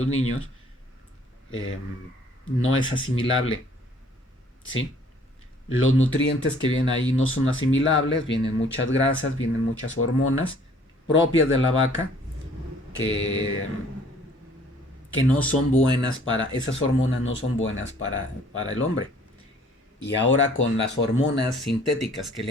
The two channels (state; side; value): normal; both; correlation 0.57